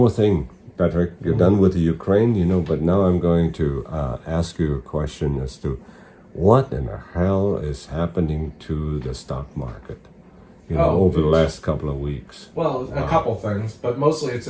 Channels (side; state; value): both; identical; correlation 1.00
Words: thing, Patrick. You're done with the Ukraine, but now I'm going to ask you a question as to what in the hell is happening to the stock market, over the last couple of weeks. Well, a couple things, but mostly it's